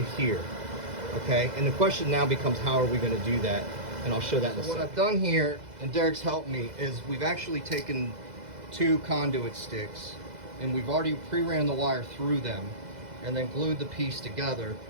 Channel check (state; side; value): late; left; 2.0 ms